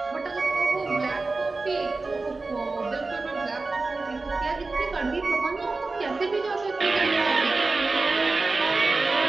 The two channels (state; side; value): quieter; left; 3.6 dB